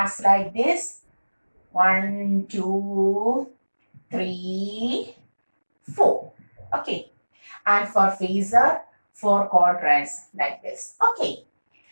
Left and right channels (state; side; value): inverted; both; correlation -1.00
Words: like this. 1, 2, 3, 4. Okay. And for phasor, 4 quadrants like this. Okay.